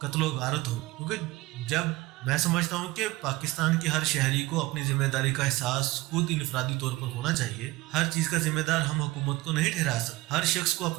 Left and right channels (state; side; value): quieter; left; 19.9 dB